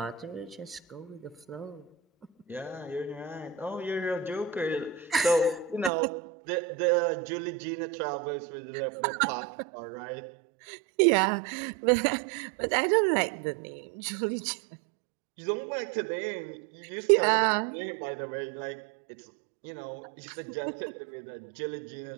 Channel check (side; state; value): left; drops out; at 5.9 s